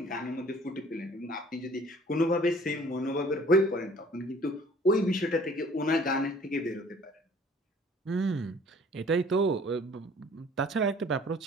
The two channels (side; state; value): both; normal; correlation 0.53